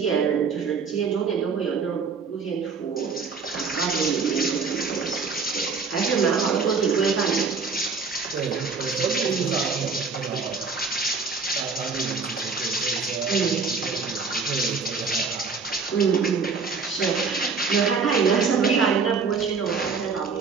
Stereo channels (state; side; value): quieter; left; 5.0 dB